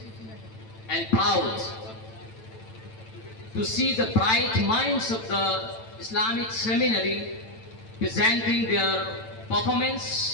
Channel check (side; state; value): right; late; 9.0 ms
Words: and proud to see the bright minds of the Islamic seminary presenting their